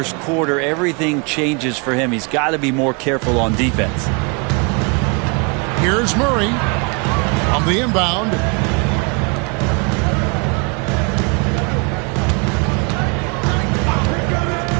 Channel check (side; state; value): left; quieter; 33.0 dB